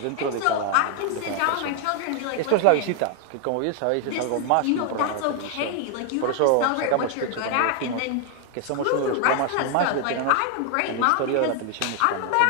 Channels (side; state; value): both; different; correlation 0.00